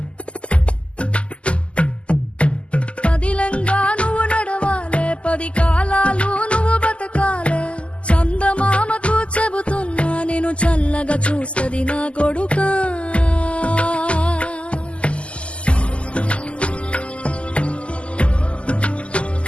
పదిలంగా నువ్వు నడవాలే, 10 కాలాలు నువ్వు బతకాలే. చందమామకు చెబుతున్నా నేను చల్లగా చూస్తది నా కొడుకా.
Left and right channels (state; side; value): late; right; 0.056 ms